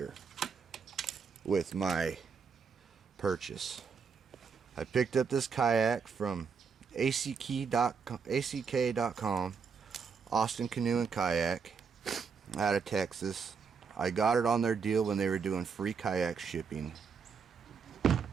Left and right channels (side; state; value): left; quieter; 5.8 dB